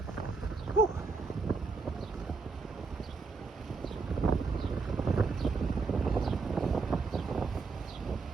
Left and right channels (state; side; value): quieter; left; 4.4 dB